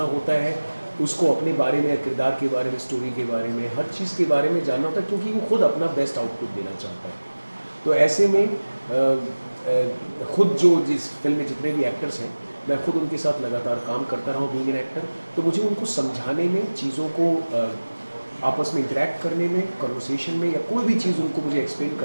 होता है, उसको अपने बारे में, किरदार के बारे में, स्टोरी के बारे में, हर चीज़ के बारे में जानना होता है, क्योंकि वो खुद अपना बेस्ट आउटपुट देना चाहता है। तो ऐसे में खुद जो जिस फिल्म में जितने भी एक्टर्स हैं, मैं खुद उनके साथ लगातार काम करता रहा हूँ बीइंग एन एक्टर। तो मुझे उनको समझाने में, चीज़ों को आपस में इंटरेक्ट करने में, कन्वर्सेशन में, या कोई भी चीज़ उनको मुझे एक्सप्लेन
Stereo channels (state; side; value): inverted; both; correlation -1.00